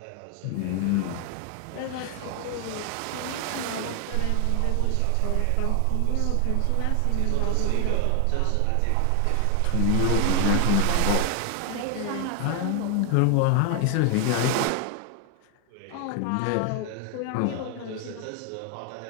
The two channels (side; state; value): both; different; correlation 0.00